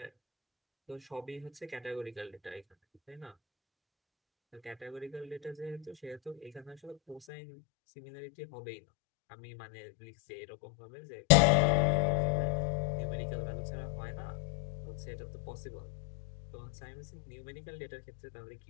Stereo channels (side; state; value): right; drops out; at 7.2 s